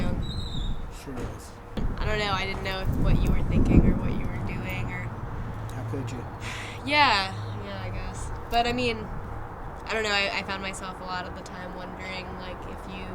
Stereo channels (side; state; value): both; identical; correlation 1.00